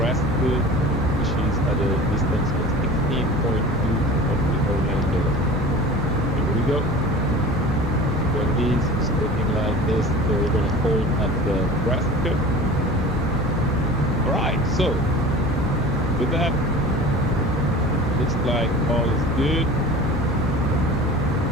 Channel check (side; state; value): both; normal; correlation 0.39